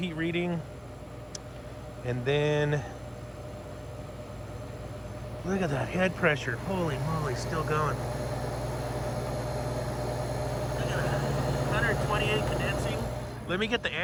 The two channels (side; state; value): both; identical; correlation 1.00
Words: reading. And then, look at that head pressure. Holy moly, still going. Look at that, 128 condensing. Let me get the